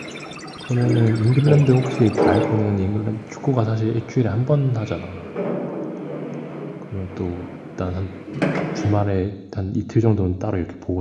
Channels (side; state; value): both; identical; correlation 1.00